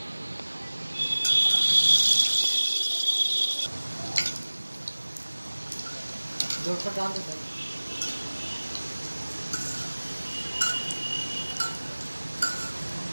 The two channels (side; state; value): both; inverted; correlation -1.00